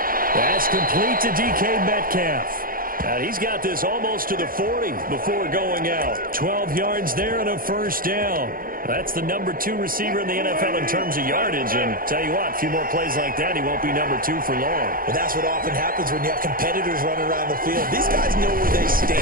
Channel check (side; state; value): left; late; 0.41 ms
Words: That's complete to DK Metcalf. He's got this almost to the 40 before going out. 12 yards there and a first down. That's the number 2 receiver in the NFL in terms of yardage. And tell you what, a few more plays like that, he won't be number 2 for long. Well, that's what often happens when you have competitors running around the field. These guys know where they